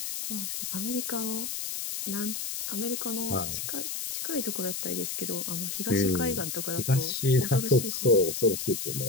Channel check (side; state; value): left; noise; hiss, 4 dB below the sound